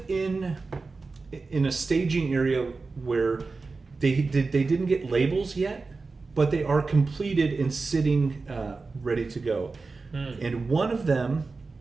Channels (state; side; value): quieter; left; 4.0 dB